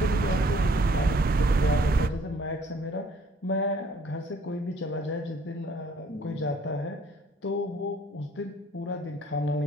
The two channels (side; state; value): both; normal; correlation 0.59